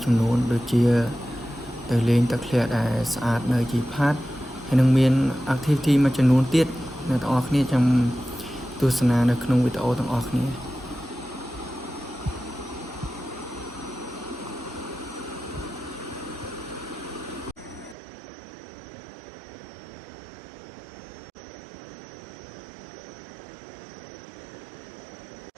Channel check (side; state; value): left; drops out; at 17.9 s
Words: ចំនួនដូចជាទៅលេងទឹកធ្លាក់ដែលស្អាតនៅជីផាត់ហើយនឹងមាន activity មួយចំនួនទៀតអ្នកទាំងអស់គ្នាចាំទស្សនានៅក្នុងវីដេអូទាំងអស់គ្នា